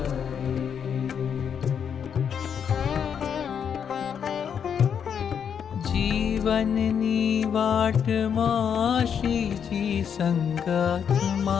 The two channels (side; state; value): right; quieter; 7.7 dB